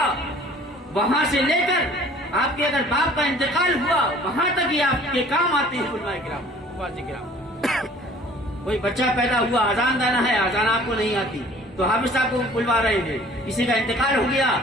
وہاں سے لے کر آپ کے اگر باپ کا انتقال ہوا وہاں تک ہی آپ کے کام آتے ہیں علماء کرام، واضح کرام۔ کوئی بچہ پیدا ہوا، اذان دینا ہے، اذان آپ کو نہیں آتی تو حافظ صاحب کو بلوا رہے ہیں۔ کسی کا انتقال ہو گیا،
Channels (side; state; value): both; normal; correlation 0.52